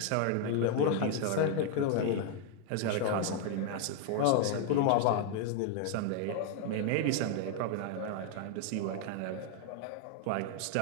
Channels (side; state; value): both; different; correlation 0.00